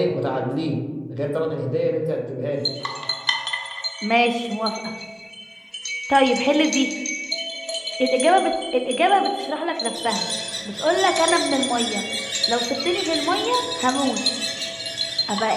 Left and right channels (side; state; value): both; identical; correlation 1.00